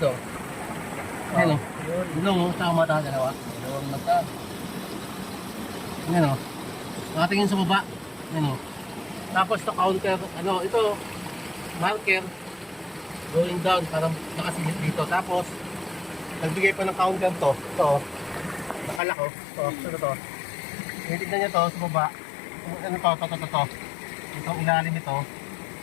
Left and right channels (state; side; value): drops out; right; at 19.0 s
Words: Ano? Ilong oh, sa mata dalawa. Dalawang mata. Ano? Nakatingin sa baba. Ano? Tapos ito counter, ano, ito marker going down para nakasilip dito. Tapos nagbigay pa ng counter to. Ito, nakalak oh. Ito. Tinitignan niya to sa baba. Ano to. Itong ilalim ito.